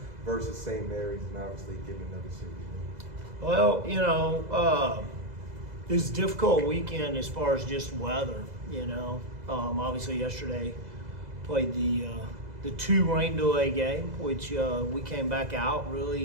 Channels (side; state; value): left; late; 2.0 ms